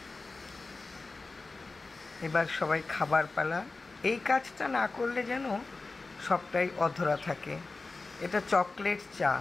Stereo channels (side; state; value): right; quieter; 3.6 dB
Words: এবার সবাই খাবার পালা। এই কাজটা না করলে যেন সবটাই অধরা থাকে। এটা চকলেট চা,